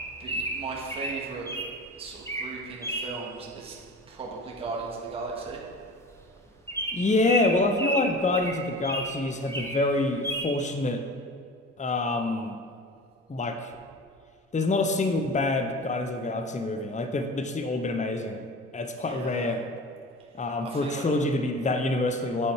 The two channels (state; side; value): normal; both; correlation 0.36